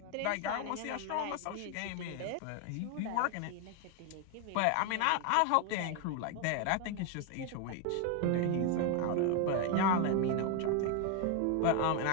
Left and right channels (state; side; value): different; both; correlation 0.01